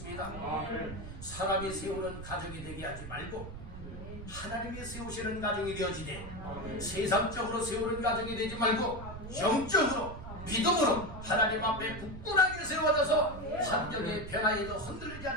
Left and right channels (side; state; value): right; noise; rumble, 11 dB below the sound